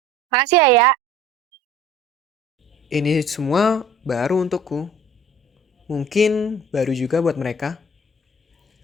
Makasih ya. Ini semua baru untukku. Mungkin baru juga buat mereka.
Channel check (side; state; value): both; normal; correlation 0.49